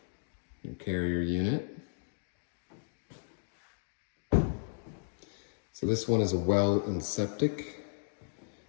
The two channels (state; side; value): silent; right; digital silence